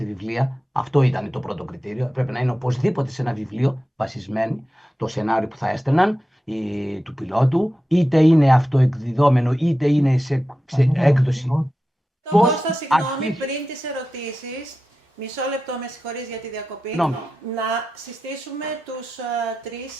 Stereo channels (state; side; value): normal; both; correlation 0.92